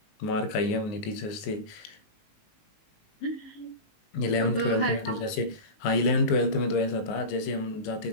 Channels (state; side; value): late; right; 19 ms